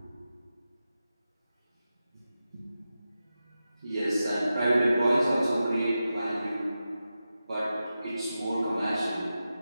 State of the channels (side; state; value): both; inverted; correlation -0.92